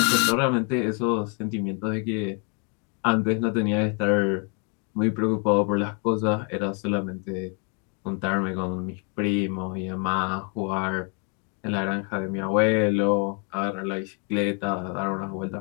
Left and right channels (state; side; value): quieter; right; 37.4 dB